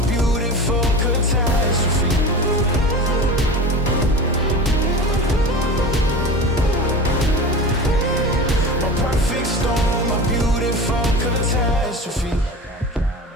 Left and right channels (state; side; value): normal; both; correlation 0.31